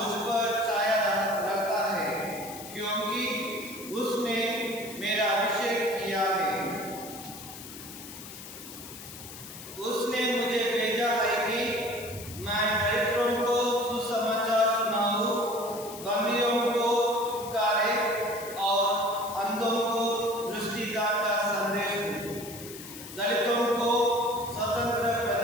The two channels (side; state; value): left; noise; hiss, 13 dB below the sound